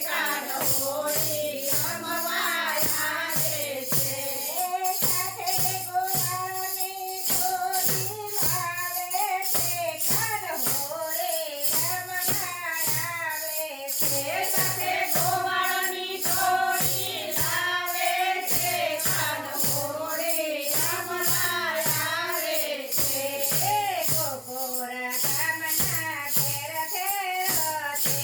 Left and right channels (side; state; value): both; identical; correlation 1.00